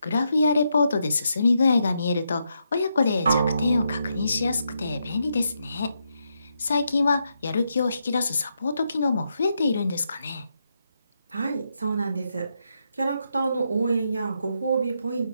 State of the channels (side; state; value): both; inverted; correlation -0.81